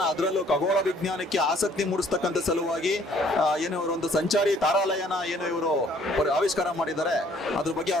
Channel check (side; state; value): both; normal; correlation 0.60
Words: ಅದರಲ್ಲೂ ಖಗೋಳ ವಿಜ್ಞಾನಕ್ಕೆ ಆಸಕ್ತಿ ಮೂಡಿಸ್ತಕ್ಕಂಥ ಸಲುವಾಗಿ ಏನು ಇವರು ಒಂದು ಸಂಚಾರಿ ತಾರಾಲಯನ ಏನು ಇವರು ಆವಿಷ್ಕಾರ ಮಾಡಿದ್ದಾರೆ. ಅದ್ರ ಬಗ್ಗೆ